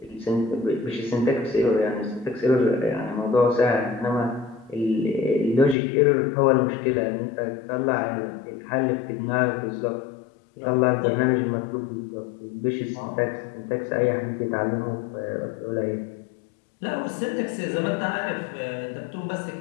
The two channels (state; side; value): drops out; right; at 5.8 s